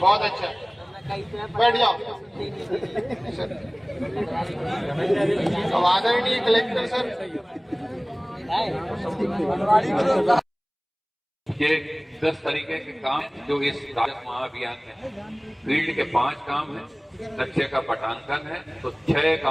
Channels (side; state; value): both; identical; correlation 1.00